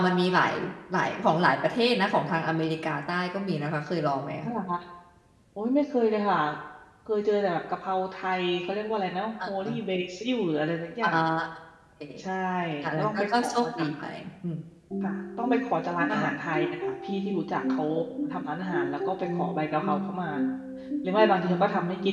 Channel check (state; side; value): identical; both; correlation 1.00